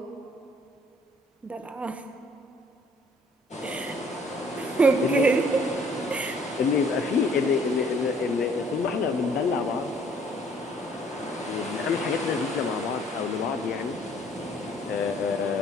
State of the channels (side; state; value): both; normal; correlation 0.59